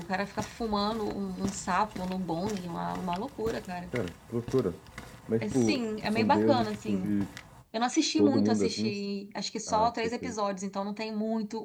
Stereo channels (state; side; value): identical; both; correlation 1.00